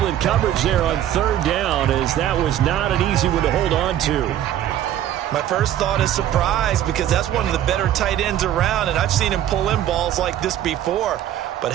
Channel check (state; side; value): quieter; left; 11.6 dB